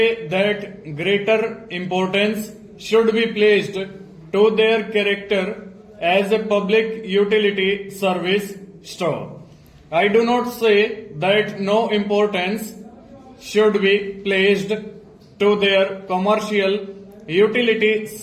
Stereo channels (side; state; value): both; identical; correlation 1.00